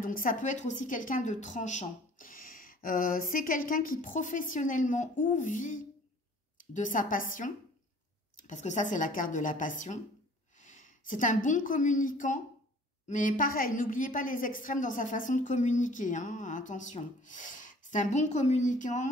ça peut être aussi quelqu'un de tranchant. C'est quelqu'un qui professionnellement ou vit de sa passion parce que ça, c'est la carte de la passion. C'est un bon communicant, mais pareil, n'oubliez pas les extrêmes dans sa façon de communiquer, hein, attention. C'est un bon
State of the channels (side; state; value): both; normal; correlation 0.51